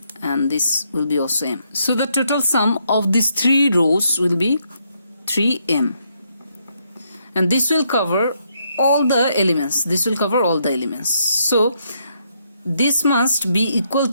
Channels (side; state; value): both; inverted; correlation -0.75